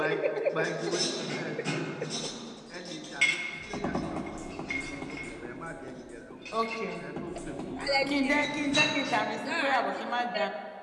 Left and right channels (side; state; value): both; identical; correlation 1.00